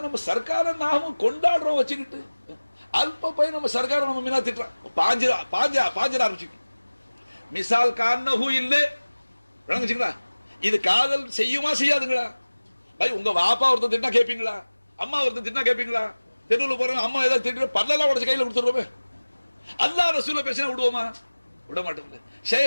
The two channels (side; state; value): both; inverted; correlation -1.00